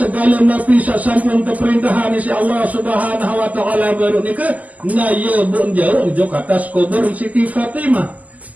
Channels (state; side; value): late; left; 0.076 ms